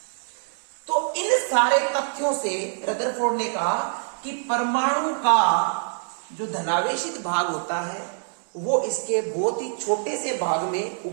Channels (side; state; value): left; silent; digital silence